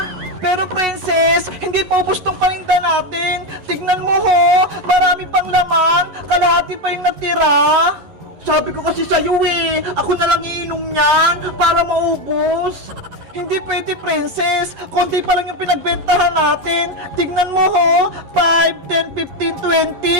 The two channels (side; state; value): left; late; 11 ms